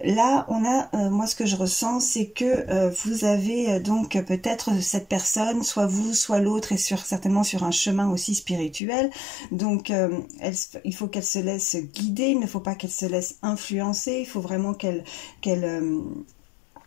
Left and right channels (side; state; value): right; drops out; at 8.8 s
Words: là, on a, moi ce que je ressens, c'est que vous avez donc peut-être cette personne, soit vous, soit l'autre, est certainement sur un chemin aussi spirituel. Donc il faut qu'elle se laisse guider, il ne faut pas qu'elle se laisse influencer, il faut vraiment qu'elle